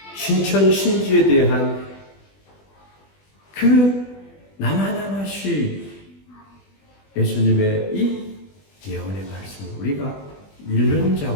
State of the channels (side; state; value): right; late; 20 ms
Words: 신천 신지에 대한 그 나마나마시 예수님의 이 예언의 말씀을 우리가 읽는